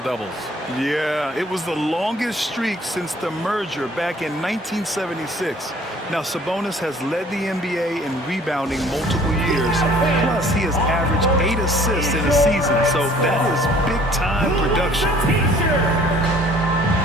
Yeah, it was the longest streak since the merger back in 1976. Now, Sabonis has led the NBA in rebounding multiple years. Plus, he has averaged 8 assists in a season, so that is big-time production.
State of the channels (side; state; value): both; normal; correlation 0.54